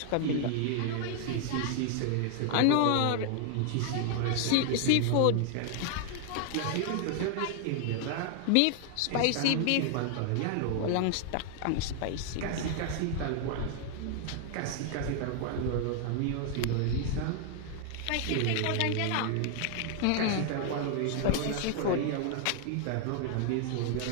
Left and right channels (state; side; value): different; both; correlation 0.00